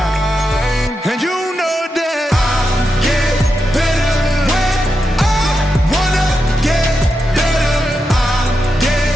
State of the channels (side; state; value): both; normal; correlation 0.87